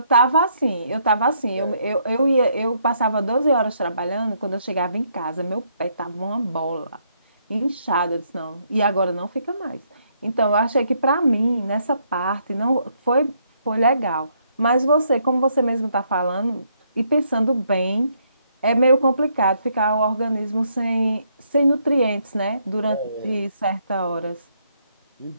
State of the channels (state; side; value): inverted; both; correlation -0.73